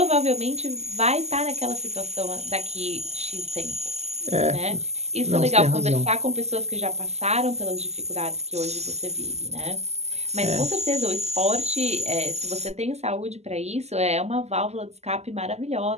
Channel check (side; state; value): left; late; 0.32 ms